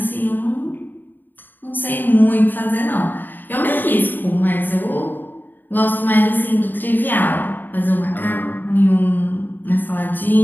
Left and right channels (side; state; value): right; late; 0.091 ms